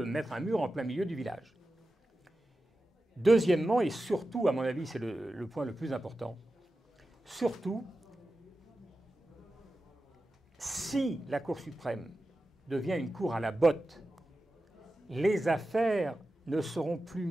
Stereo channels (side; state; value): both; normal; correlation 0.93